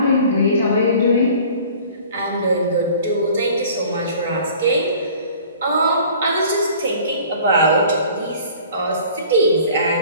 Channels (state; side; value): inverted; both; correlation -0.49